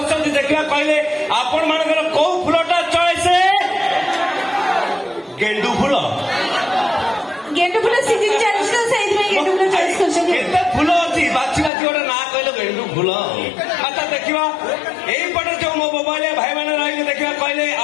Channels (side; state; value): right; drops out; at 11.7 s